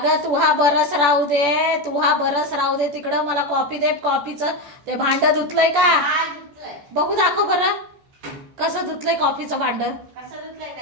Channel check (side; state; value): left; late; 14 ms